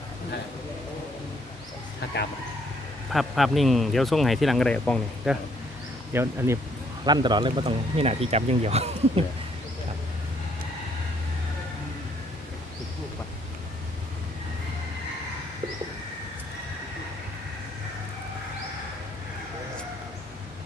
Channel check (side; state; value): both; normal; correlation 0.67